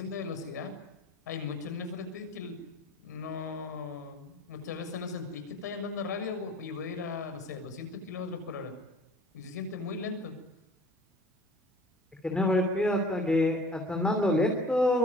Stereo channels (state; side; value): normal; both; correlation 0.47